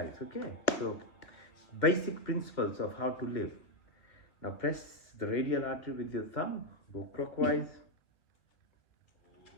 okay? So basic principles of how to live. Now press the radial artery with your thumb, go clockwise.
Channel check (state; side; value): late; right; 2.1 ms